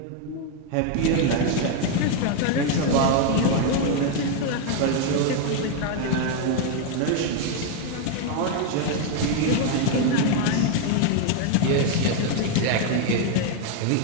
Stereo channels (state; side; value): different; both; correlation 0.01